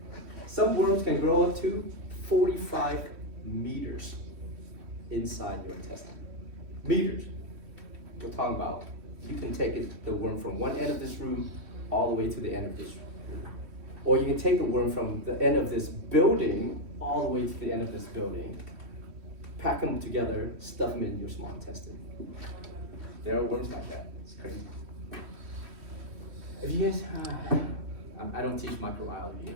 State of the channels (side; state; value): left; late; 3.1 ms